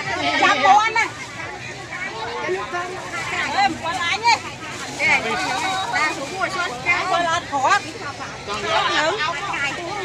chăm bố anh này em có lái nhé ra xuống ngồi xuống kéo coi lát khó con nhớ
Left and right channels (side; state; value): both; identical; correlation 1.00